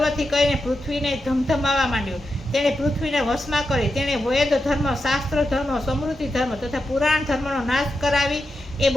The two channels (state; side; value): normal; both; correlation 0.88